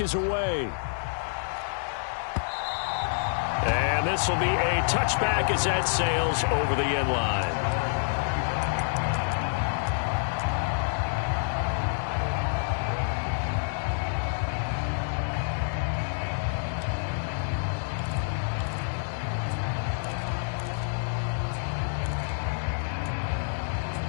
is away. And this will be a touchback as that sails over the end line.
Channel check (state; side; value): silent; right; digital silence